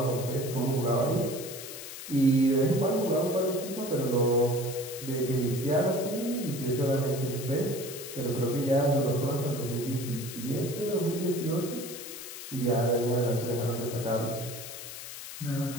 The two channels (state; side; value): noise; left; hiss, 10 dB below the sound